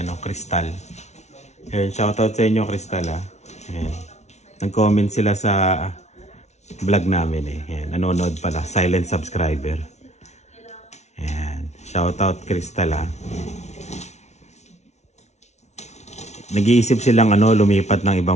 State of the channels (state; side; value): late; right; 0.32 ms